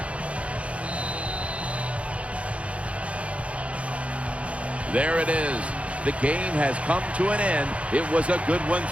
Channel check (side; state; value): left; late; 0.063 ms